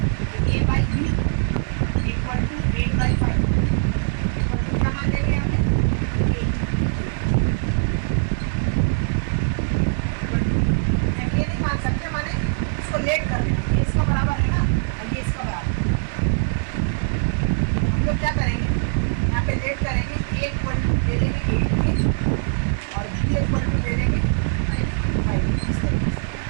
a/b equal to 8/5 equal to क्या मान लेंगे यहाँ पे 8। ये नहीं मान सकते, माने इसको लेट कर लेंगे, ये इसका बराबर है ना और ये इसका बराबर है। हम लोग क्या करेंगे यहाँ पे लेट करेंगे, a इक्वल टू ले लेंगे 8 के और b इक्वल टू ले लेंगे 5 इस तरीके से।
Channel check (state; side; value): silent; left; 64 dB below the other